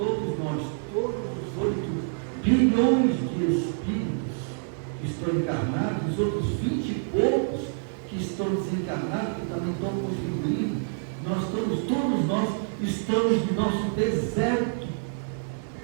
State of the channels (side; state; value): left; silent; 60 dB below the other